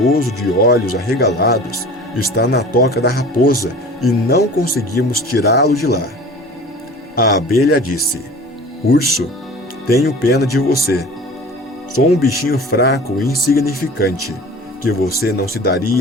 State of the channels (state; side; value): normal; both; correlation 0.41